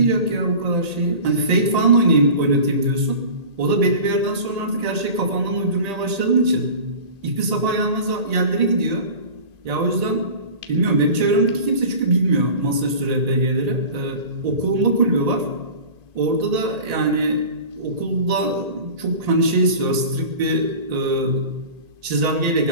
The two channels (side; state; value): left; late; 1.8 ms